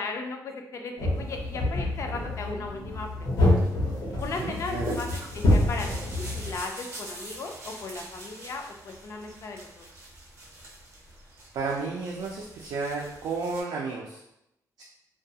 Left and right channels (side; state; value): both; normal; correlation 0.71